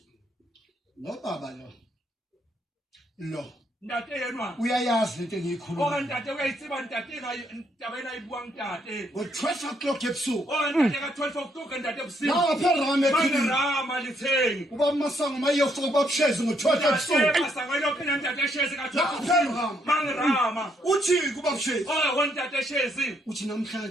lo baba lo ndate yenwa uyayazi into engiyikhuluma ndate uyayitsiba ndate ndaba enayibuwa ndate ngo-12 o'clock ebusuku ndate ka-12 o'clock ndate ebusuku lapha erama ekhini rama lithengi ubaba Masango mayiyofika ubabshezi ngo-12 ebusuku Masango elokhu ndate eshezi ka-12 lapha erama mangirama uthi kubabshezi ndate eshezi uthi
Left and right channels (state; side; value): normal; both; correlation 0.73